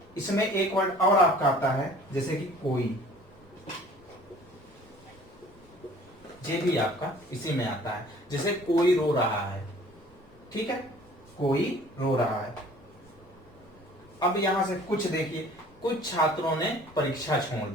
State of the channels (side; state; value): both; normal; correlation 0.51